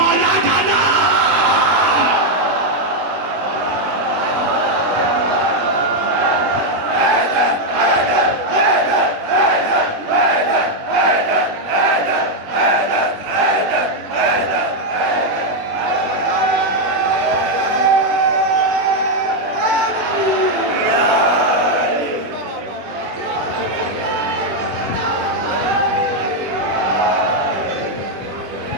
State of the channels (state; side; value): late; left; 21 ms